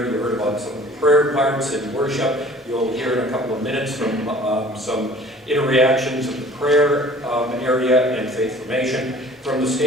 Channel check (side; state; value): both; normal; correlation 0.49